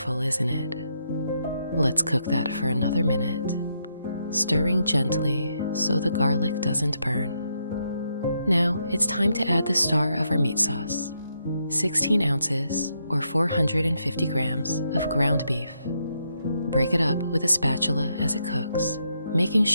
isn't it? Let's cook that for another minute, stirring gently so the garlic doesn't burn. Now it's time to add the star of our meat sauce, 16 ounces or 450 grams of ground beef. Break it up with a spatula as it cooks, making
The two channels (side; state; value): both; inverted; correlation -0.79